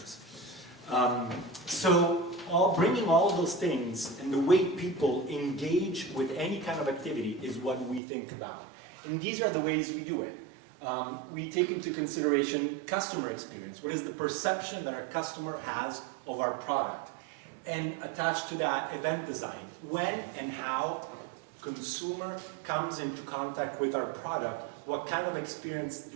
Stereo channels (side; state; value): left; drops out; at 8.0 s